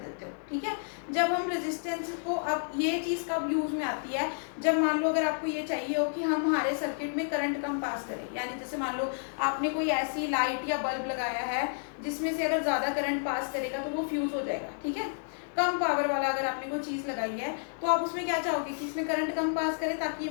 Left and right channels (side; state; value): right; silent; 57 dB below the other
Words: हो। ठीक है, जब हम रेजिस्टेंस को, अब ये चीज़ कब यूज में आती है, जब मान लो अगर आपको ये चाहिए हो कि हम हमारे सर्किट में करंट कम पास करें, यानी जैसे मान लो आपने कोई ऐसी लाइट या बल्ब लगाया है जिसमें से अगर ज़्यादा करंट पास करेगा तो वो फ्यूज हो जाएगा। ठीक है, कम पावर वाला अगर आपने कोई चीज़ लगाई है तो आप उसमें क्या चाहोगे कि इसमें करंट कम पास करे ताकि ये